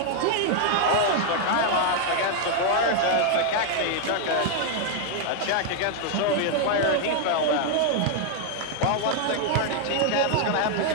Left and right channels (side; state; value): both; different; correlation 0.00